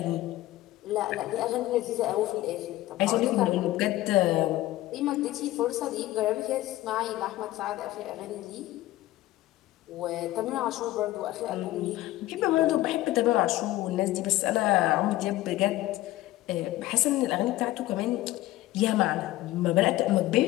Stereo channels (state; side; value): quieter; right; 16.4 dB